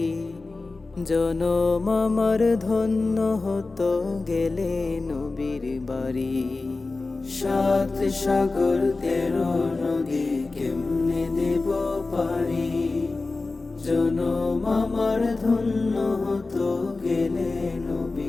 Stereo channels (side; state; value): right; quieter; 3.6 dB